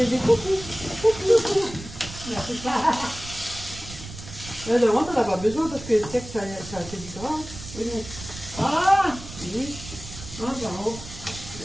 coucou. Là, devant, t'en as pas besoin parce que tu sais que ça c'est du gras. Oui. Ah, Oui. ah, bravo.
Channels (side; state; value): right; noise; rumble, 13 dB below the sound